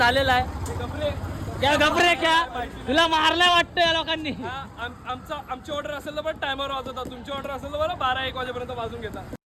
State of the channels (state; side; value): identical; both; correlation 1.00